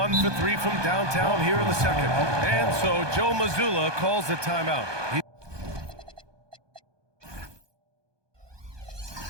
for 3 from downtown here in the second. And so Joe Mazzulla calls the timeout.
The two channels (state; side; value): late; left; 1.2 ms